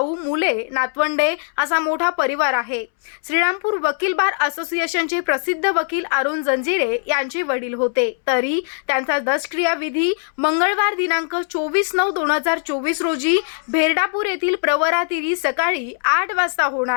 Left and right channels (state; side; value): silent; right; 65 dB below the other